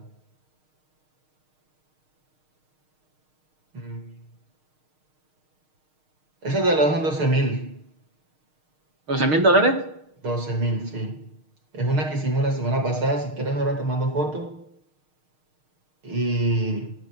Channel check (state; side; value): late; left; 6.5 ms